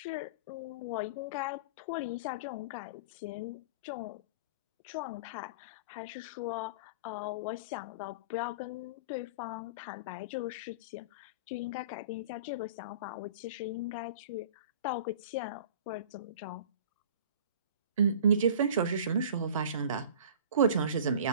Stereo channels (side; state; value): both; inverted; correlation -0.41